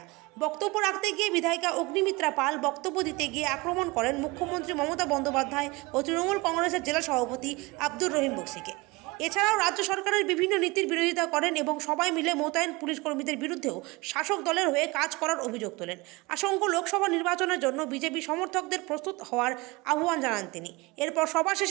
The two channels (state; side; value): quieter; left; 24.1 dB